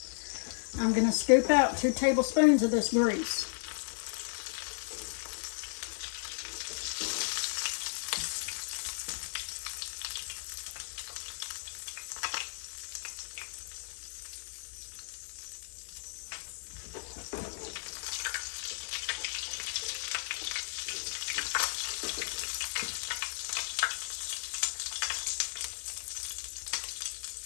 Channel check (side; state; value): right; silent; digital silence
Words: I'm going to scoop out 2 tablespoons of this grease.